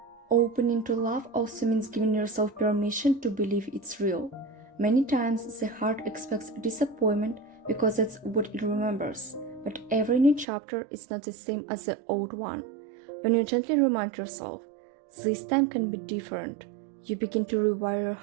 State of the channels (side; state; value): left; drops out; at 10.5 s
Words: Opening to love also means giving yourself permission to believe it's real. Many times the heart expects disappointment because that's what it remembers, but every new chapter is not the same as the old one. When you gently remind yourself, this time can be different, you begin to rewire your